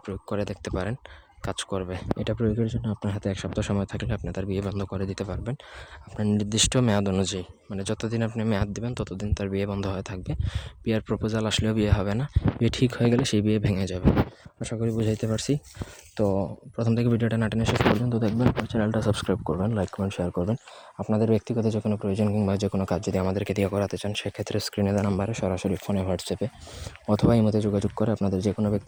প্রয়োগ করে দেখতে পারেন, কাজ করবে। এটা প্রয়োগের জন্য আপনার হাতে 1 সপ্তাহ সময় থাকলে আপনি তার বিয়ে বন্ধ করে দিতে পারবেন আপনার নির্দিষ্ট মেয়াদ অনুযায়ী। মানে যতদিন আপনি মেয়াদ দেবেন ততদিন তার বিয়ে বন্ধ হয়ে থাকবে। বিয়ের প্রপোজাল আসলেও বিয়ে হবে না, বিয়ে ঠিক হয়ে গেলে সেই বিয়ে ভেঙে যাবে। আশা করি বুঝাইতে পারছি। তো প্রথম থেকে ভিডিওটা না টেনে শেষ পর্যন্ত দেখবেন, চ্যানেলটা সাবস্ক্রাইব করবেন, লাইক কমেন্ট শেয়ার করবেন। আপনাদের ব্যক্তিগত যে কোনো প্রয়োজন কিংবা যে কোনো কাজ যদি আমাদেরকে দিয়ে করাতে চান, সেক্ষেত্রে স্ক্রিনে দেওয়া নাম্বারে সরাসরি ফোনে, হোয়াটসঅ্যাপে অথবা ইমোতে যোগাযোগ করে আপনাদের যে কোনো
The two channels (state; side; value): identical; both; correlation 1.00